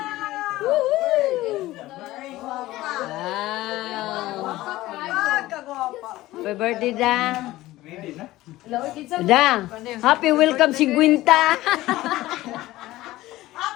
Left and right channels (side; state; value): right; quieter; 16.9 dB